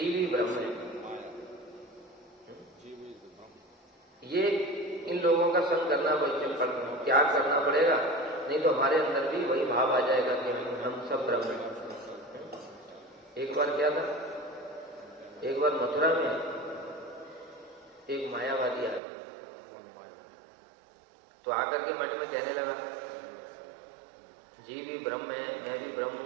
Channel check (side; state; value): left; drops out; at 19.0 s